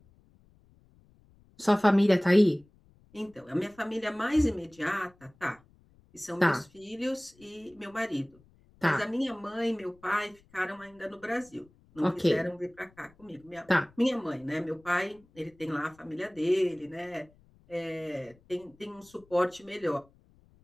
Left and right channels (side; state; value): left; noise; rumble, 29 dB below the sound